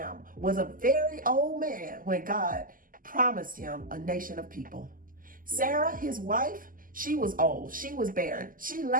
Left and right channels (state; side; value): late; left; 0.41 ms